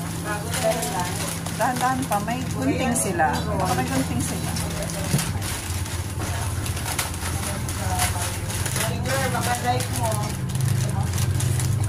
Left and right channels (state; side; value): identical; both; correlation 1.00